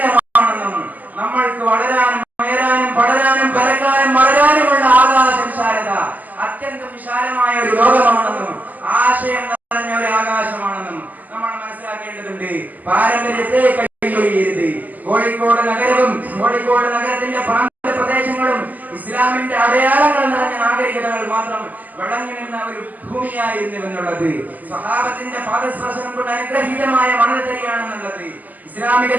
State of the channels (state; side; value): late; left; 0.081 ms